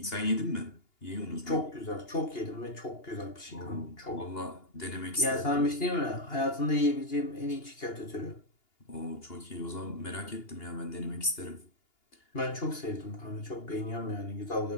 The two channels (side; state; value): right; late; 2.8 ms